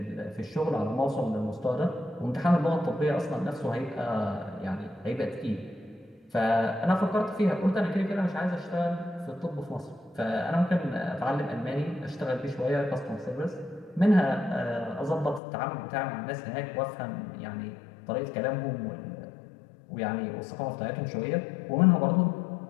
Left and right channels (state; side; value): drops out; right; at 15.4 s